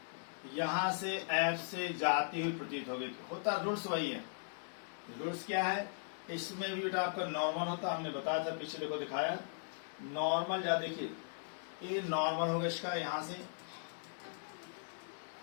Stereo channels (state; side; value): silent; right; digital silence